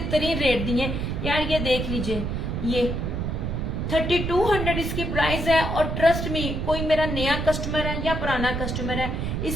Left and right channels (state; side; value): noise; right; rumble, 2 dB below the sound